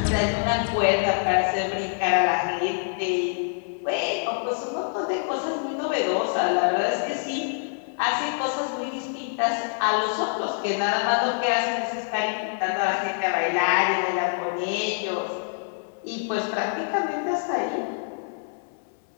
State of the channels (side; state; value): right; silent; digital silence